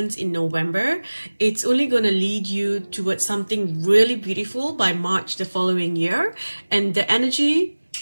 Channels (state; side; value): inverted; both; correlation -1.00